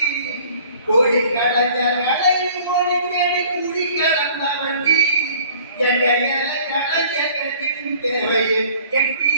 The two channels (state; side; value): inverted; both; correlation -0.52